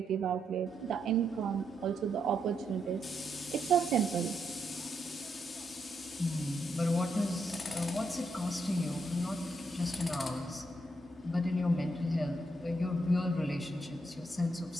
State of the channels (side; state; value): both; normal; correlation 0.79